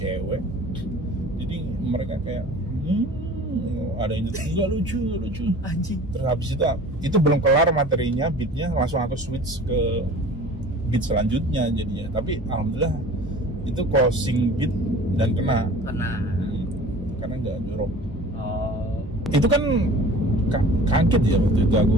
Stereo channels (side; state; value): both; normal; correlation 0.44